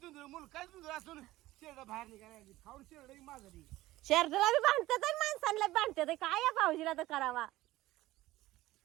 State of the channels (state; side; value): quieter; left; 17.0 dB